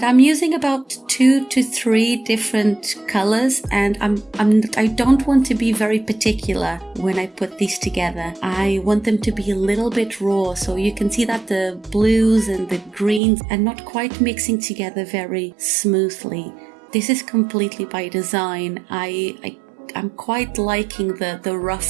I'm using about 2 to 3 different colors, and I don't want to be very particular when I put these together. I want them to be a little bit raw, so you can see that the blues and the greens are not quite mixing together very smoothly. This is completely by design. I'm quite liking the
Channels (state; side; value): drops out; left; at 13.2 s